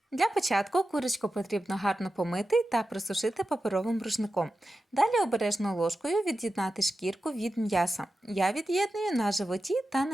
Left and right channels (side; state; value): both; normal; correlation 0.92